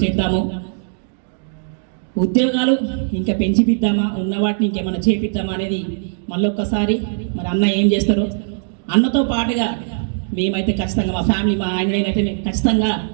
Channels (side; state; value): left; silent; digital silence